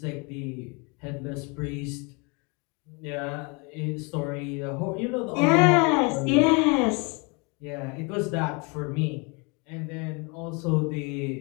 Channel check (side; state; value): right; quieter; 31.1 dB